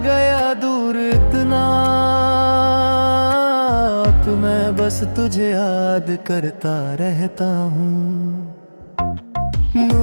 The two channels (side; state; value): both; inverted; correlation -1.00